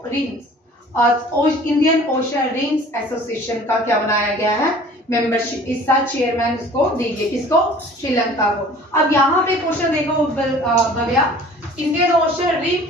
रिंग्स और इंडियन ओशन रिंग्स एसोसिएशन का क्या बनाया गया है, मेंबरशिप। इसका चेयरमैन इसको दीजिए, किसको, श्रीलंका को। अब यहाँ पे क्वेश्चन देखो Bhavya, Indian ocean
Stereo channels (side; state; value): both; normal; correlation 0.48